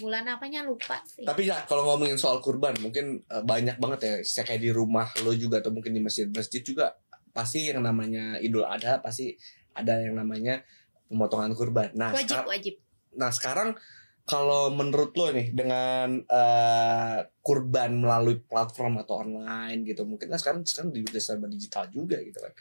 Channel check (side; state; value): both; inverted; correlation -1.00